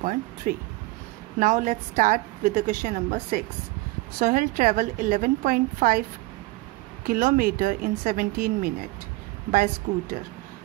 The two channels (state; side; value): quieter; left; 21.3 dB